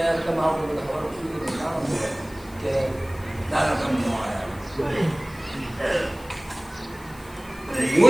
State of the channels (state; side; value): noise; left; hiss, 23 dB below the sound